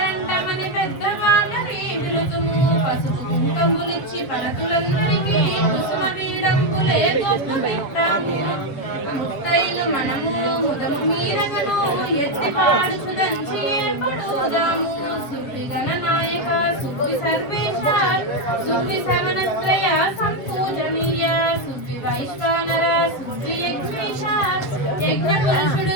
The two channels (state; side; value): late; right; 7.4 ms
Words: పెద్దవాళ్ళని పిలుతుము పసుపు కుంకములిచ్చి పలతులందరికీ కుసుమ వీడంబులే గొప్ప పెట్టాము ముత్తైలు మనము ముదము మీరగను ఎత్తిపాడుచు దంచి ఏర్పడుదాము సువ్వి గణనాయక సువ్వి సర్వేశ సువ్వి సవనత్రయ సంపూజనీయ సువ్వి వైశ్వానర సువ్వి యజ్ఞేశ యజ్ఞ